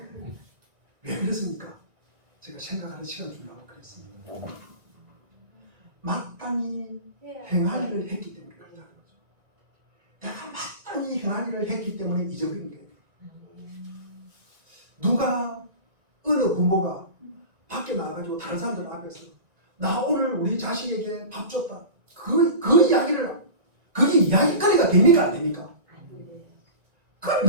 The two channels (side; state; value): left; late; 1.9 ms